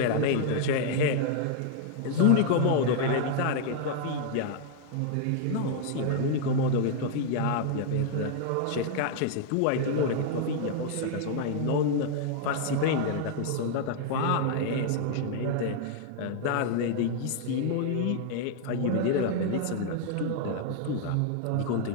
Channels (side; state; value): both; different; correlation 0.00